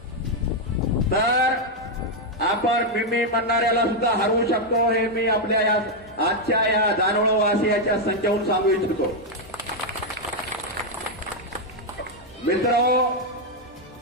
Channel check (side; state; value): both; normal; correlation 0.01